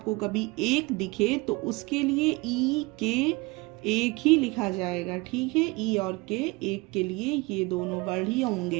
कभी एक दिखे तो उसके लिए ई के एक ही लिखा जाएगा। ठीक है, ई और के एक के लिए ये दोनों वर्ड ही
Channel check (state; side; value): quieter; left; 24.8 dB